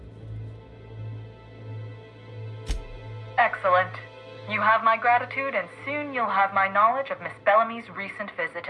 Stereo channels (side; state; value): both; identical; correlation 1.00